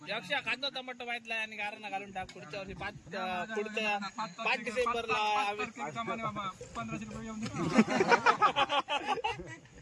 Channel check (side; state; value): both; identical; correlation 1.00